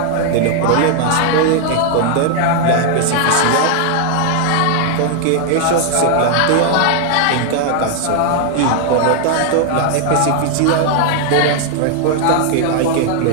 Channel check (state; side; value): different; both; correlation 0.00